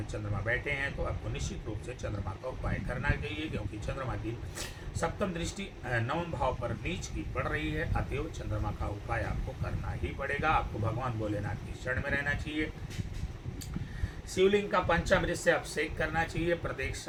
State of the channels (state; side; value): identical; both; correlation 1.00